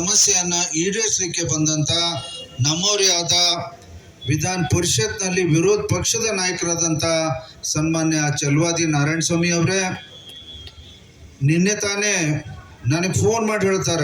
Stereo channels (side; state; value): both; identical; correlation 1.00